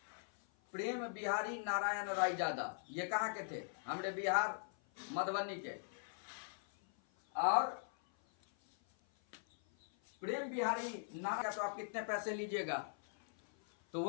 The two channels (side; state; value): right; silent; 50 dB below the other